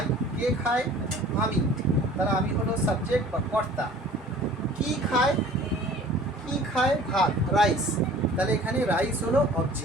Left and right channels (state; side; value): normal; both; correlation 0.48